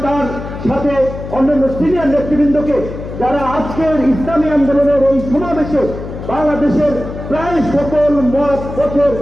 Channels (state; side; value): noise; left; hum, 10 dB below the sound